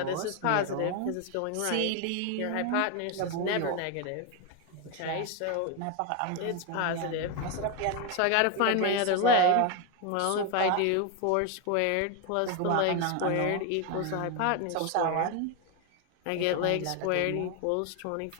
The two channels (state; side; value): different; both; correlation 0.01